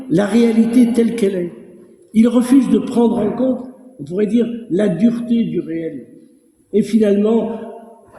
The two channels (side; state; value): both; identical; correlation 1.00